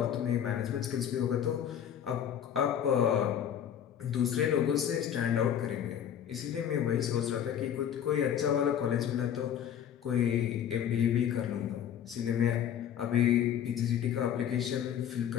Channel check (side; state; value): right; quieter; 9.4 dB